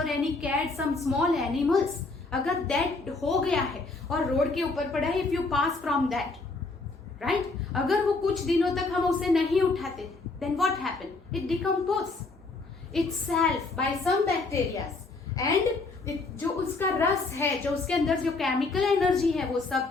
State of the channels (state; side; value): quieter; right; 3.6 dB